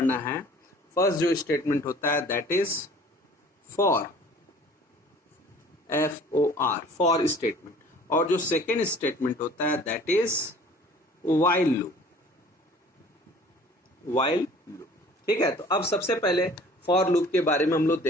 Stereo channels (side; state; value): both; normal; correlation 0.49